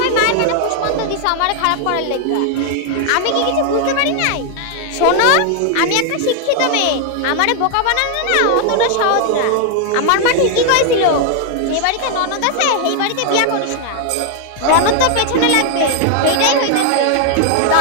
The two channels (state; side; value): different; both; correlation 0.00